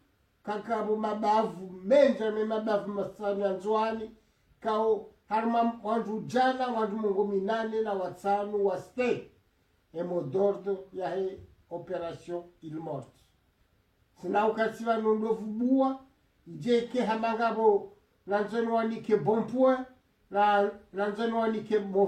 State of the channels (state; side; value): identical; both; correlation 1.00